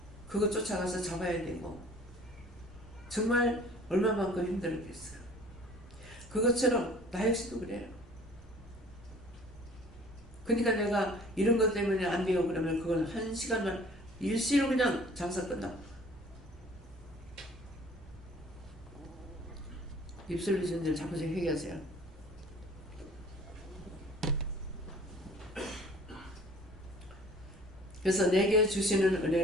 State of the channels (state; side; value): normal; both; correlation 0.50